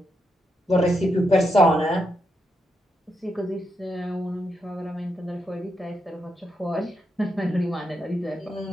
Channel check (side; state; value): both; normal; correlation 0.82